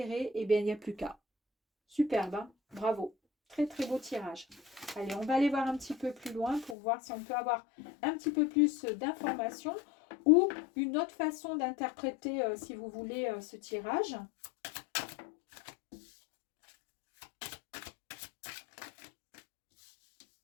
et bien, il n'y a plus qu'à. Superbe, hein. Bravo. Très très beau tirage. Allez, on va aller voir un petit peu plus loin pour voir si on peut avoir un petit peu plus d'informations ou une autre façon d'interpréter, si vous voulez, ce tirage.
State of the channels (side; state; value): right; drops out; at 6.8 s